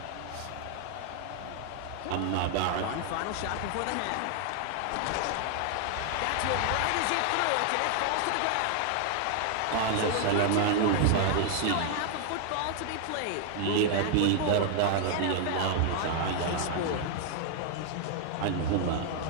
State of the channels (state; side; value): different; both; correlation 0.00